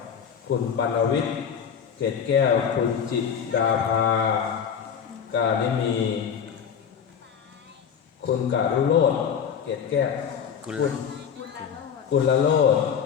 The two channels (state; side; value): quieter; right; 7.5 dB